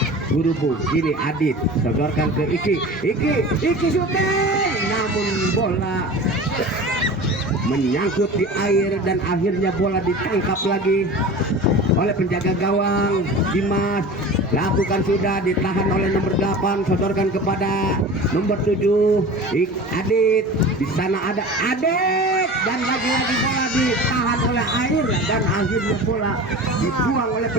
Burubug. Ini Adit setorkan ke Iki syuting, namun bola menyangkut di air dan akhirnya bola ditangkap lagi oleh penjaga gawang Dimas. Lakukan sudah, ditahan oleh nomor 8, sodorkan kepada nomor 7 Adit. Di sana ada Adit dan lagi-lagi bola ditahan oleh air dan akhirnya bola dibuang oleh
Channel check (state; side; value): normal; both; correlation 0.35